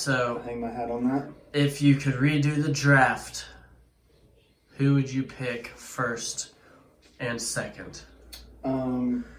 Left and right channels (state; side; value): identical; both; correlation 1.00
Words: hang my hat on that. If you could redo the draft, who would you pick first and second?